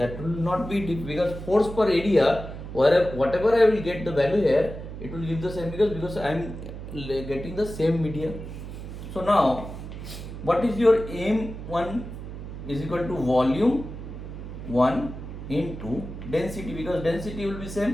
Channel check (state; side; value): noise; right; hum, 10 dB below the sound